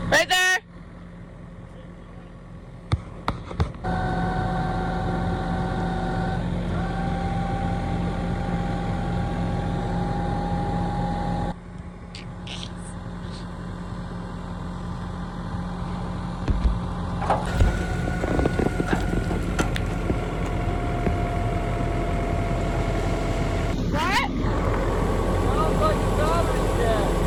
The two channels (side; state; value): both; identical; correlation 1.00